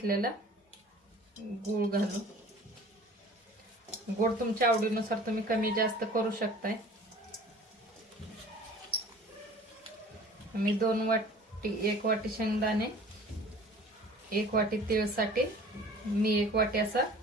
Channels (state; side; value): normal; both; correlation 0.46